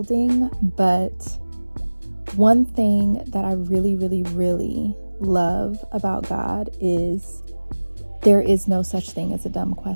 but one thing that I really, really, really love about God is there is no such thing as a dumb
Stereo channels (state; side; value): inverted; both; correlation -1.00